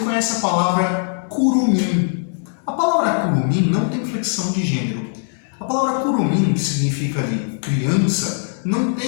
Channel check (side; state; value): right; silent; 66 dB below the other